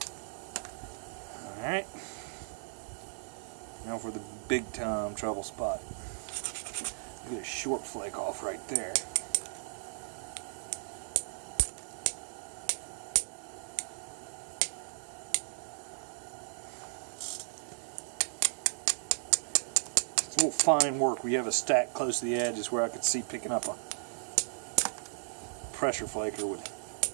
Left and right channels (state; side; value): silent; left; digital silence